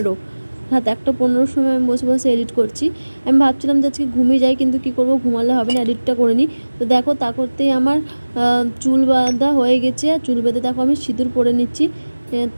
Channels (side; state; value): both; inverted; correlation -1.00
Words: রাত 1:15 সময় আমি বসে বসে এডিট করছি। আমি ভাবছিলাম যে আজকে ঘুমিয়ে যাই, কিন্তু কী করবো, ঘুমালে হবে না, এডিটটা করে নিই। তো দেখো তা করতেই আমার চুল বাঁধা হয়ে গেছে। আর চুল বেঁধে দেখো আমি সিঁদুর পরে নিচ্ছি।